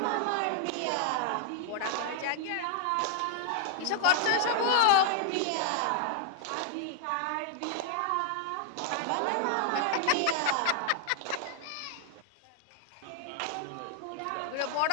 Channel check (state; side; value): different; both; correlation -0.01